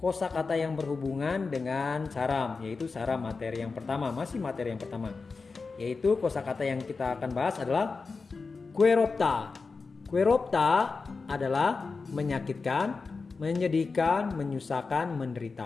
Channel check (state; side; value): quieter; right; 4.4 dB